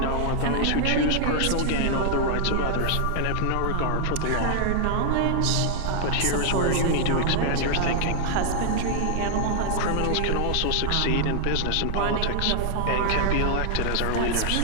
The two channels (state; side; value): different; both; correlation 0.00